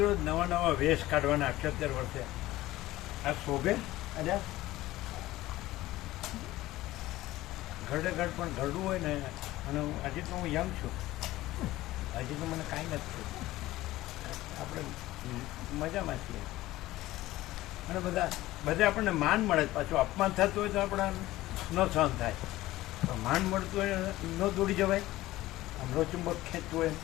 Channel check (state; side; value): quieter; right; 16.8 dB